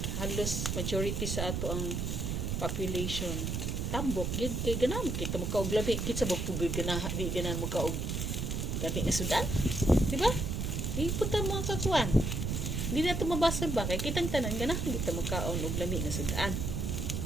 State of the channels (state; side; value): noise; right; rumble, 1 dB below the sound